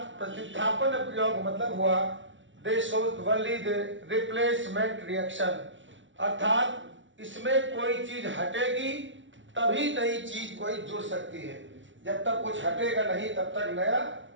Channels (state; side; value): late; left; 0.55 ms